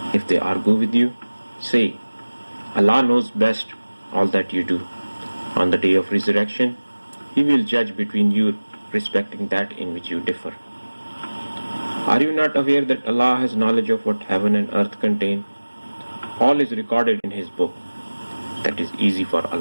If they argue with you, say, Allah knows best all that you do. On the day of resurrection, He will judge between you respecting that in which you differ. Are you not aware that Allah has knowledge of what heaven and earth contain? All is recorded in His book. That is easy for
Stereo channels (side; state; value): both; inverted; correlation -1.00